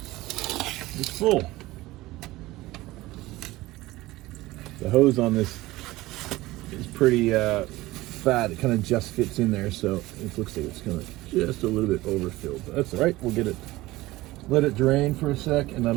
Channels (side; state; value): left; quieter; 18.5 dB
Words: is full. The hose on this is pretty fat. It kind of just fits in there, so it looks like it's kind of just a little bit overfilled. But that's all right. We'll get it. Let it drain for a sec, and